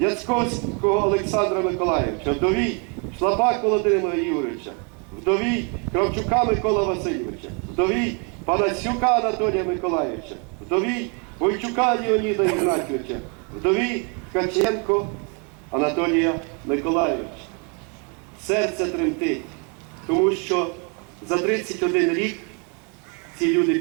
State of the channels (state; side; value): quieter; left; 35.7 dB